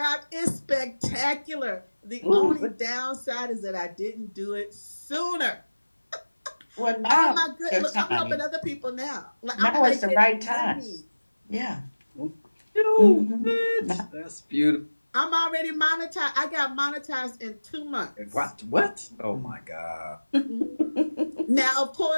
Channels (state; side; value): inverted; both; correlation -1.00